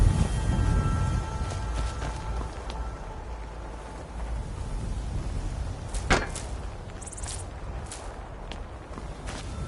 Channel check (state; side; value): identical; both; correlation 1.00